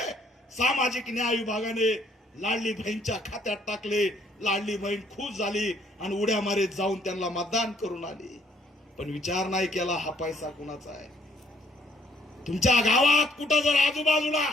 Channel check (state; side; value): normal; both; correlation 0.65